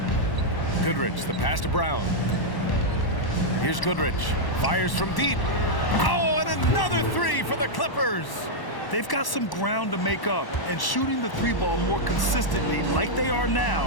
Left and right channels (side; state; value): right; late; 1.1 ms